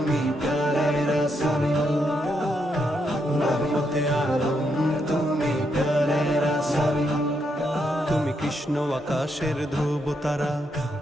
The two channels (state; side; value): normal; both; correlation 0.79